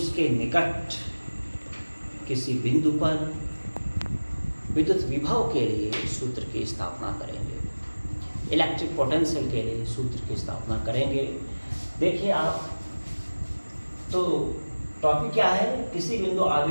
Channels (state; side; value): inverted; both; correlation -1.00